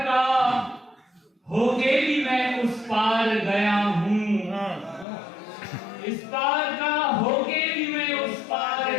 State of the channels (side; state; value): right; drops out; at 5.1 s